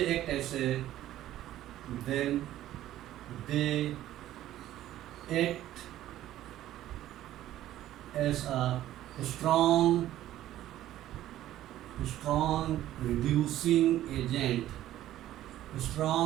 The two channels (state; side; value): quieter; left; 13.4 dB